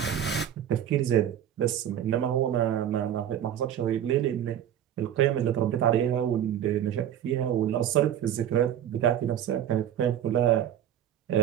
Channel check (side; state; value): left; quieter; 10.4 dB